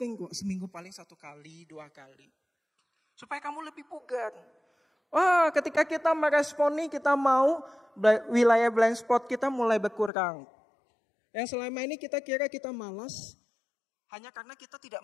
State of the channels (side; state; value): right; drops out; at 10.1 s